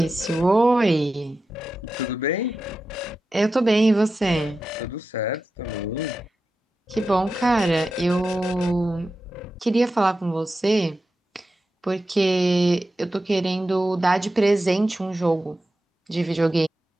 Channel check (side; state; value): both; normal; correlation 0.91